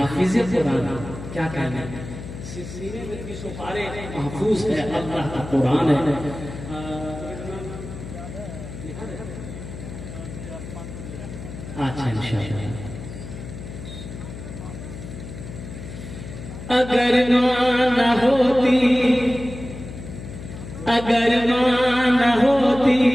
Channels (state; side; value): noise; left; hum, 11 dB below the sound